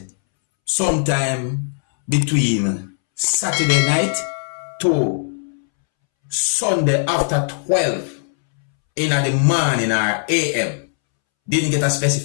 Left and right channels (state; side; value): silent; right; 66 dB below the other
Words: sometime between Saturday night to Sunday after 12 in the morning or AM. Didn't get a